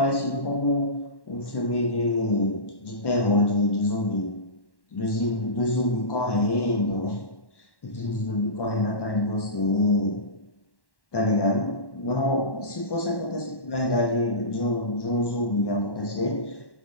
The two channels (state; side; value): late; right; 1.1 ms